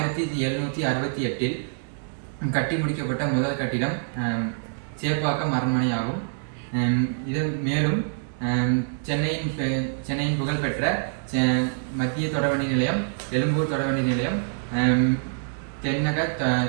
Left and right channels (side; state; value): left; silent; digital silence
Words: கட்டி முடிக்கப்பட்ட முதல் கட்டிடம் சேப்பாக்கம் அரண்மனை ஆகும். இதன் மேலும் சென்னையின் புகழ்பெற்ற மத்திய தொடர்வண்டி நிலையம், எழும்பூர் தொடர்வண்டி நிலையம், தென்னக